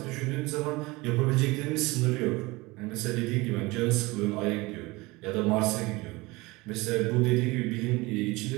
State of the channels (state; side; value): quieter; left; 22.7 dB